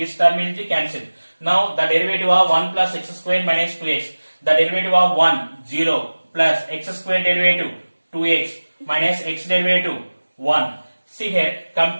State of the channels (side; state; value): both; inverted; correlation -1.00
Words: term will be cancelled. Now the derivative of 1 plus x square minus 2x. The derivative of 1, 0 plus x square derivative 2x minus x derivative 1. See here,